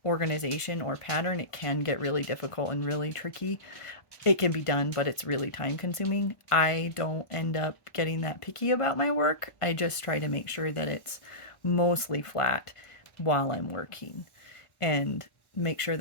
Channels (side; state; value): right; late; 1.4 ms